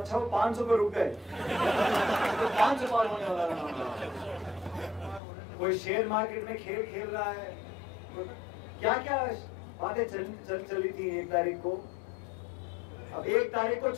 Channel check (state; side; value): drops out; right; at 5.2 s